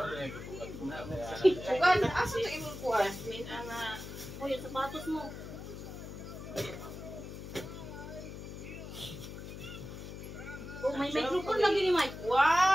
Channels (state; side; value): noise; left; hum, 10 dB below the sound